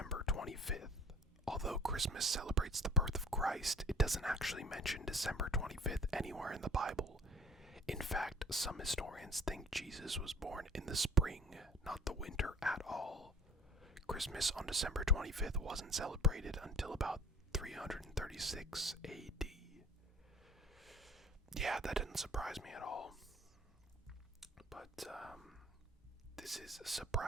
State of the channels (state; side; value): normal; both; correlation 0.46